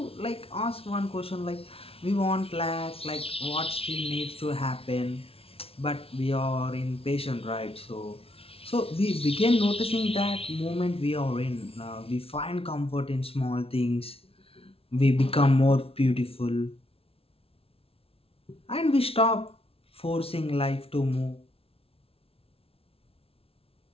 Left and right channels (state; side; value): late; right; 0.27 ms